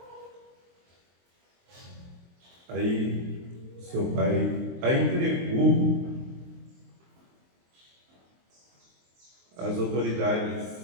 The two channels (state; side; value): late; left; 23 ms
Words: Aí seu pai a entregou às